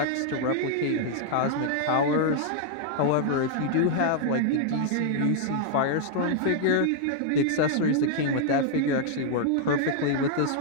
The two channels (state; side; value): different; both; correlation -0.01